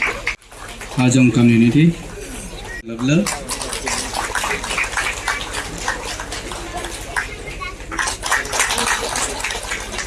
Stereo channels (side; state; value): both; identical; correlation 1.00